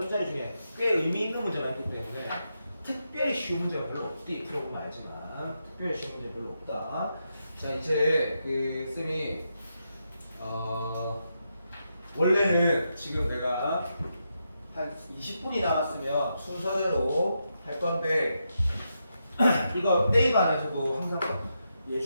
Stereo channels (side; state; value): both; inverted; correlation -0.84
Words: 중에 꽤 의미 있는 문제가 있기 때문에 특별히 쉬운 문제가 별로 없디. 풀어보면 알지만 특별히 쉬운 문제 별로 없다. 자 이제 그 쌤이 원래는 지금 내가 한 20분이 남았으면 순서대로 할 건데 이거 네이버 안에서도 항상